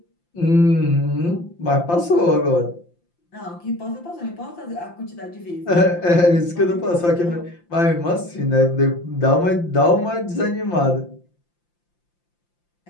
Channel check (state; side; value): late; right; 5.8 ms